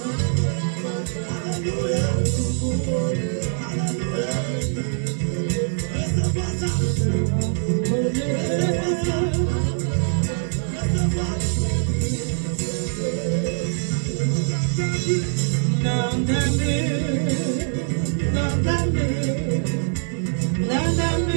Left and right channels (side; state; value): left; silent; 63 dB below the other